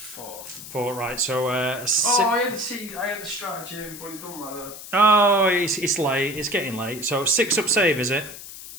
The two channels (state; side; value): noise; left; hiss, 13 dB below the sound